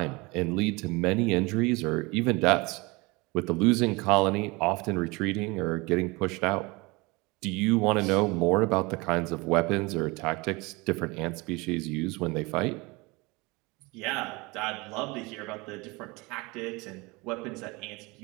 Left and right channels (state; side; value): quieter; left; 25.1 dB